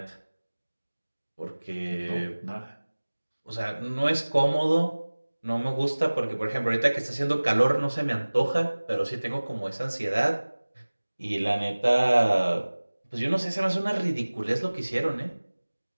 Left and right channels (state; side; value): inverted; both; correlation -1.00